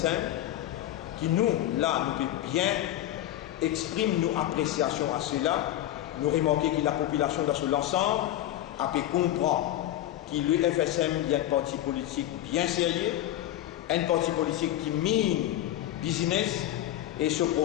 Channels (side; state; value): right; quieter; 13.3 dB